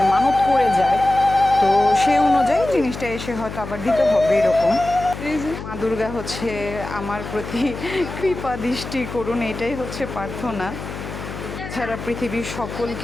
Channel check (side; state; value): left; noise; hum, 10 dB below the sound